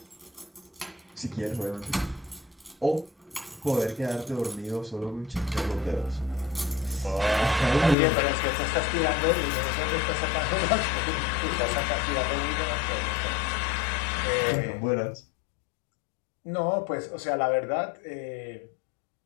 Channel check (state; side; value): drops out; right; at 8.0 s